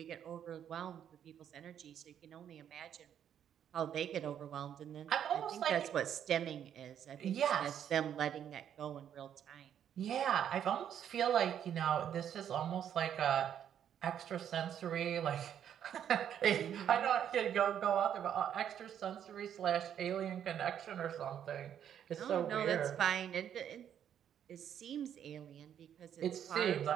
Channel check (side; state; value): left; quieter; 9.4 dB